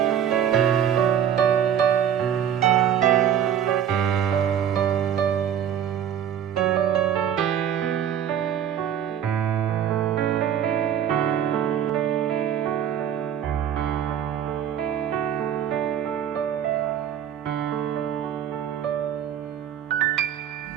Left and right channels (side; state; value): left; quieter; 9.4 dB